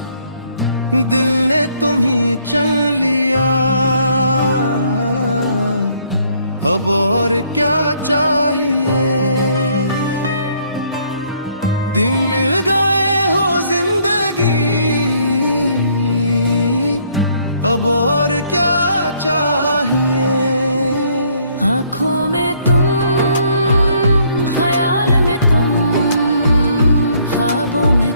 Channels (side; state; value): both; inverted; correlation -0.65